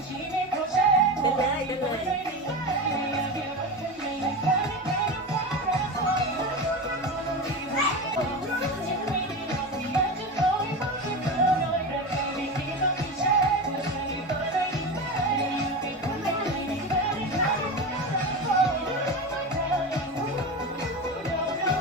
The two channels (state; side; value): normal; both; correlation 0.23